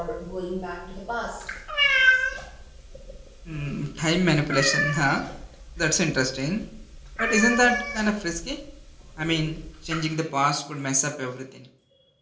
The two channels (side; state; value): both; identical; correlation 1.00